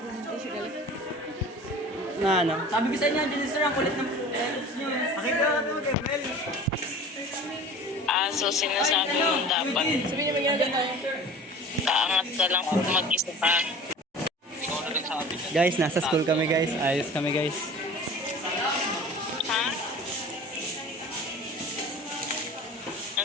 Na ano? Sabi ko sa inyo, dyan sir, ang kulit ng letters nyo. Pakita ka ito, Gabriel. So sinasabi mo dapat kaangat ka lang kung mag-isa ka. Guys, nasa school kami guys. Ayos kami guys. Ha?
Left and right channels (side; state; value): both; normal; correlation 0.41